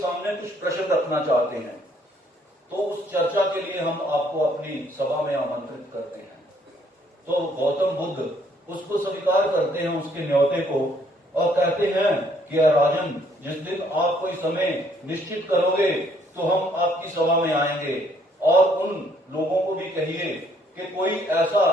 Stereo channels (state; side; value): normal; both; correlation 0.66